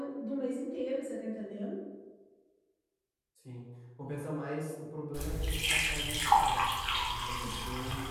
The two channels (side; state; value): both; identical; correlation 1.00